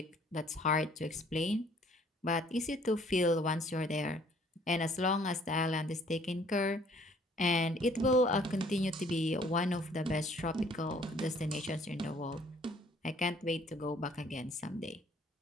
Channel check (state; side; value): normal; both; correlation 0.59